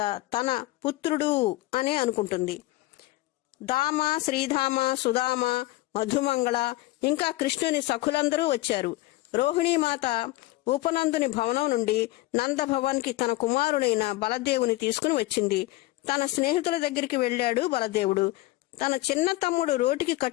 తన పుత్రుడు అనే అనుకుంటుంది. దామ, శ్రీధామ, సుధామ, మధుమంగళ ఇంకా కృష్ణుని సఖులందరూ వచ్చారు. రోహిణీమాత ఉపనందుని భవనం నుండి నందభవన్కి తన కుమారుడైన బలదేవుని తీసుకుని వచ్చింది. తన స్నేహితుల దగ్గరికి వెళ్ళాడు బలదేవుడు. తన చిన్న తమ్ముడు రోటికి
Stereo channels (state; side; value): quieter; right; 18.4 dB